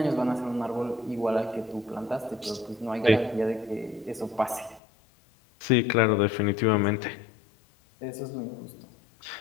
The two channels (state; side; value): drops out; right; at 4.8 s